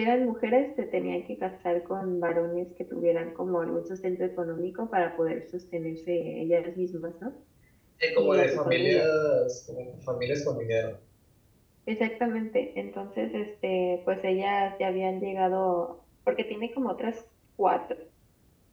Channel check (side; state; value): both; identical; correlation 1.00